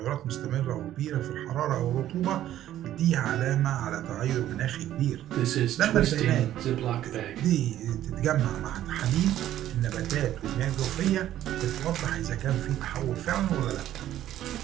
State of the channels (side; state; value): left; quieter; 12.5 dB